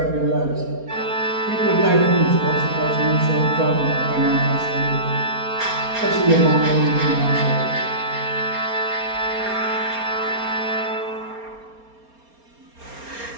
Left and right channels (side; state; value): left; late; 4.3 ms